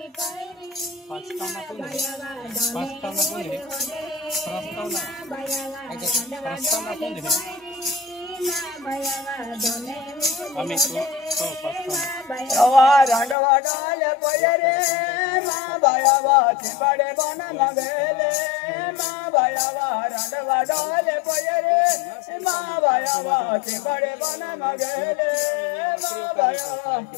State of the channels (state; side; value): drops out; right; at 13.4 s